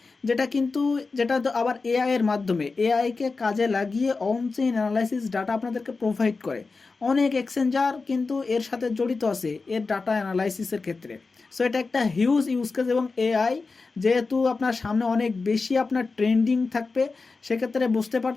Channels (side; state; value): right; quieter; 4.1 dB